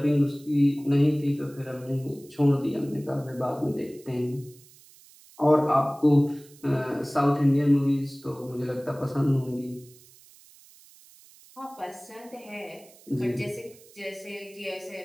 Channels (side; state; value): right; noise; hiss, 24 dB below the sound